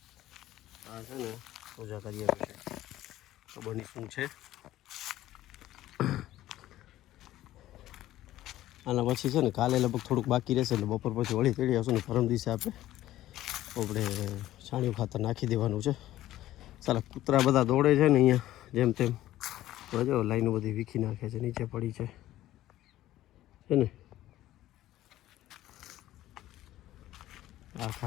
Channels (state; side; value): quieter; right; 14.4 dB